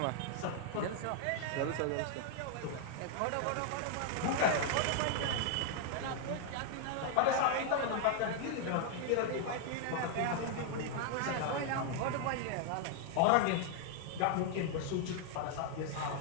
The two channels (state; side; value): different; both; correlation 0.00